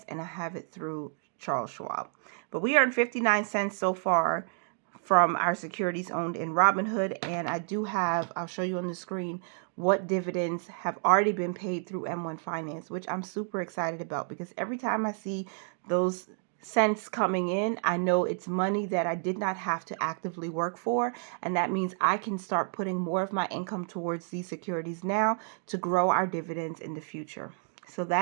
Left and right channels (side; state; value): left; silent; 58 dB below the other